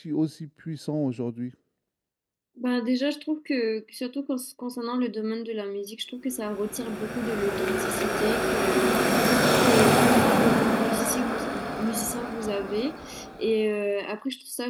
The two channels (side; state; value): both; identical; correlation 1.00